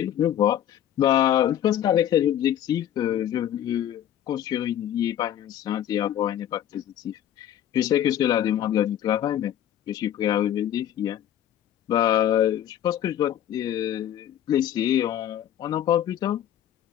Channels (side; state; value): right; quieter; 10.9 dB